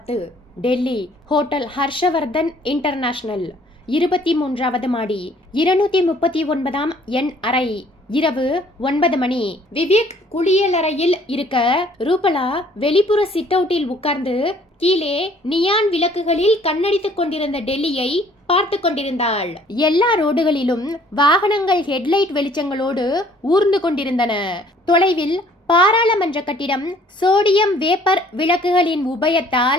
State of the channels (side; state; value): both; normal; correlation 0.58